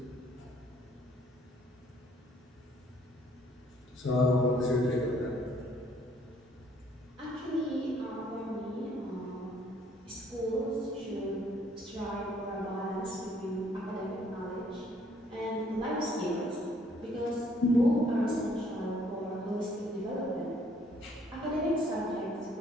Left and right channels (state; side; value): normal; both; correlation 0.63